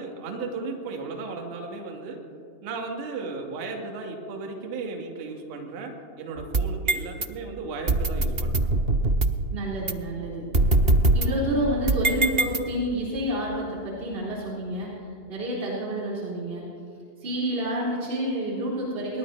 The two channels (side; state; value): left; late; 2.8 ms